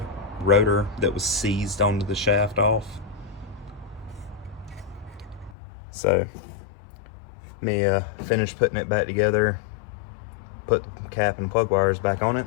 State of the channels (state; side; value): drops out; right; at 5.6 s